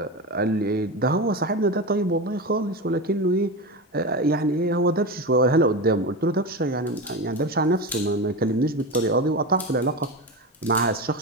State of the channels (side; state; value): both; normal; correlation 0.21